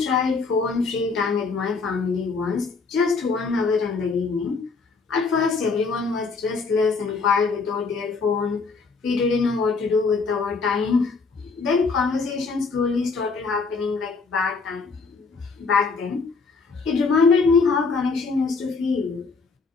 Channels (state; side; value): quieter; right; 4.5 dB